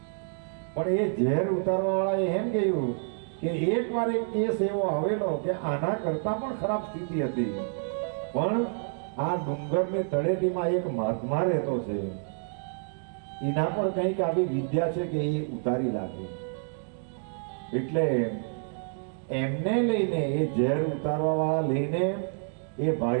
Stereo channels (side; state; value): left; silent; digital silence